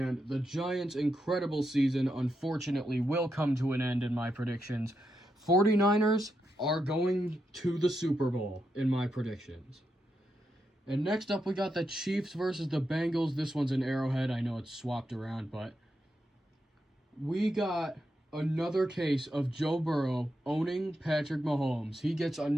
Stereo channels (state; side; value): normal; both; correlation 0.84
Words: the Giants' incredible season, unfortunately, will come to an end in my predictions. 49ers are going to the Super Bowl in my predictions. And next up, we got the Chiefs versus the Bengals. This one's an Arrowhead. I know it's swapped around, but we got another case of Joe Burrow owning Patrick Mahomes. He gets